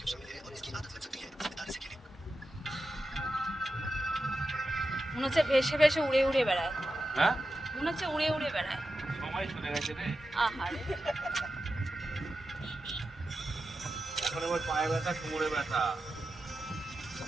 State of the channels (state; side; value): normal; both; correlation 0.90